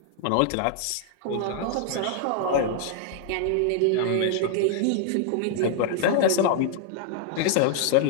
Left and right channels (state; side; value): different; both; correlation -0.01